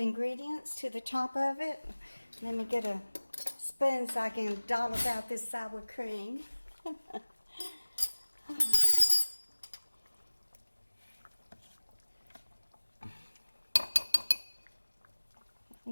to the top of it. Let me get a spoon so I can dollop out this sour cream. I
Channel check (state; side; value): inverted; both; correlation -1.00